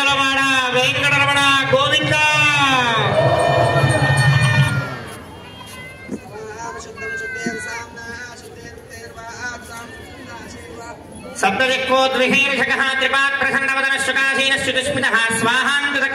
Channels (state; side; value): identical; both; correlation 1.00